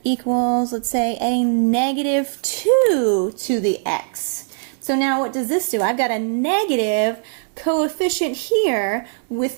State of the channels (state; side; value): silent; left; digital silence